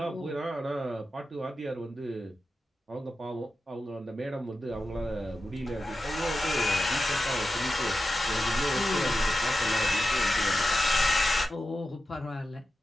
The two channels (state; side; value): normal; both; correlation 0.91